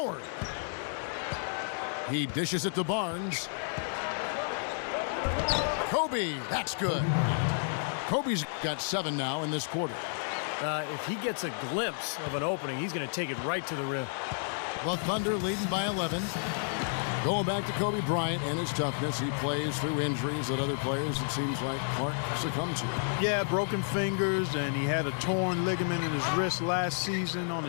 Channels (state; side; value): silent; right; digital silence